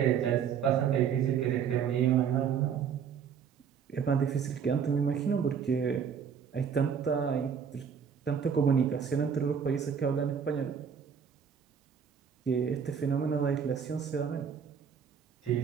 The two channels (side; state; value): left; quieter; 7.3 dB